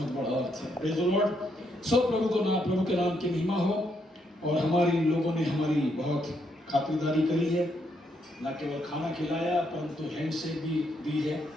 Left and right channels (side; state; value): both; normal; correlation 0.76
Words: बड़ा अर्थ है। Praise the Lord. सो प्रभु के नाम की महिमा हो। और हमारी लोगों ने हमारी बहुत खातिरदारी करी है, न केवल खाना खिलाया परंतु हैंडशेक भी दी है,